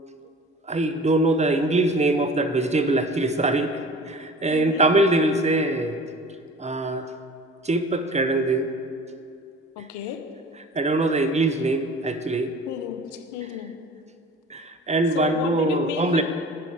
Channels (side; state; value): both; normal; correlation 0.42